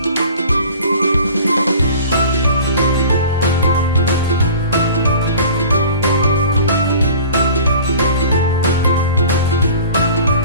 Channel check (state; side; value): inverted; both; correlation -0.44